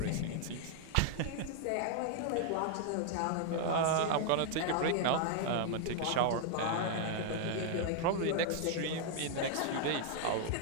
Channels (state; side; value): different; both; correlation 0.00